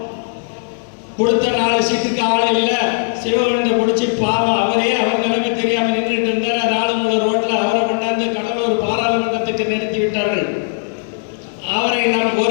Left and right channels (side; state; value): right; silent; digital silence